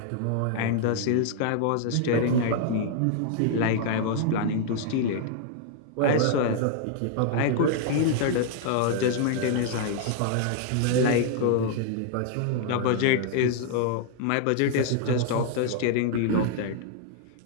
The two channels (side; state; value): both; different; correlation 0.00